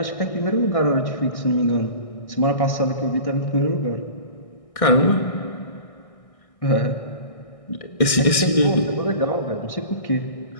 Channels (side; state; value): right; late; 1.6 ms